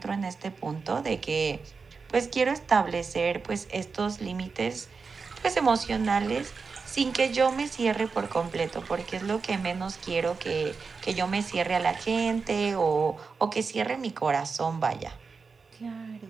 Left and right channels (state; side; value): quieter; left; 4.9 dB